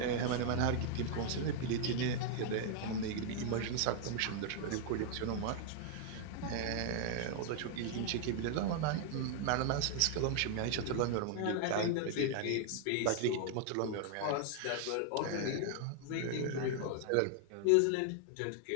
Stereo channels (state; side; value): different; both; correlation 0.00